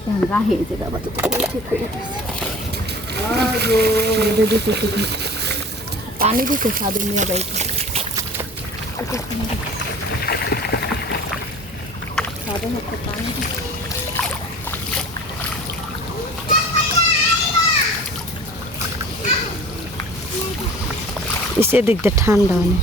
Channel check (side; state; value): both; normal; correlation 0.43